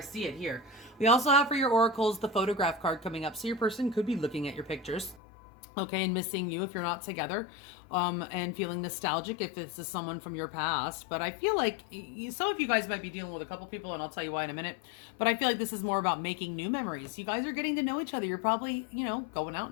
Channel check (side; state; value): right; drops out; at 5.2 s